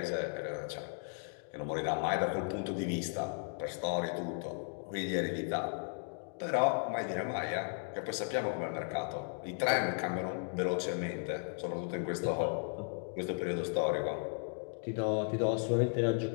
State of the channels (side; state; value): right; silent; 54 dB below the other